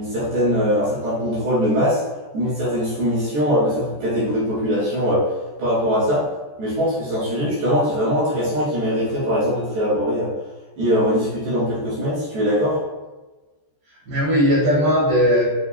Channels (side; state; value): left; late; 14 ms